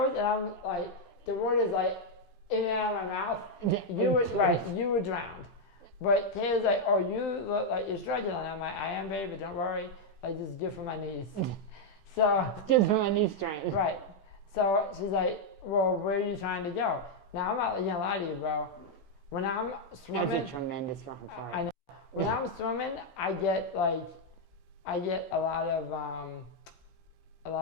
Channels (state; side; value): late; right; 16 ms